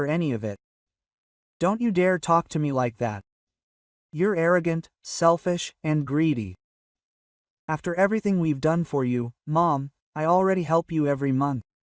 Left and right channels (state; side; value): identical; both; correlation 1.00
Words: any of it. Don't you dare talk to me like that. You're arrogant, selfish, and greedy. After everything we've done for you, Mom, I already help you every month.